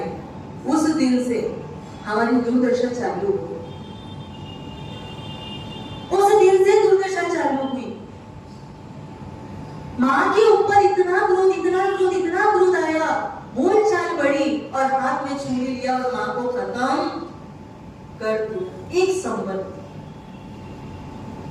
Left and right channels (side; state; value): both; identical; correlation 1.00